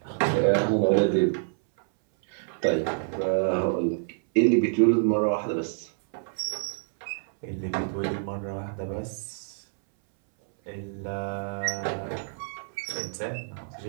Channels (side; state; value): left; silent; 60 dB below the other